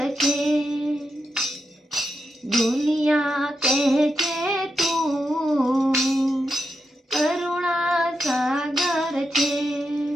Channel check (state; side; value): normal; both; correlation 0.85